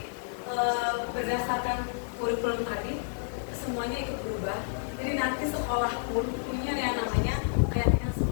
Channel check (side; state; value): right; silent; digital silence